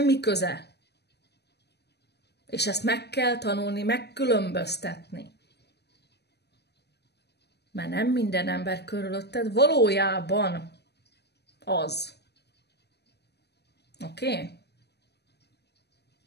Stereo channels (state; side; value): late; right; 0.48 ms